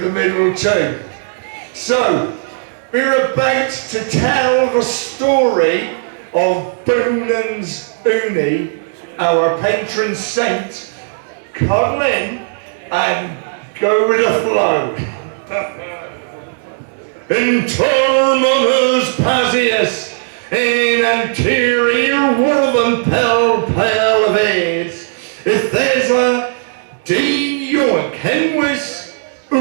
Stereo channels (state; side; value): silent; left; 69 dB below the other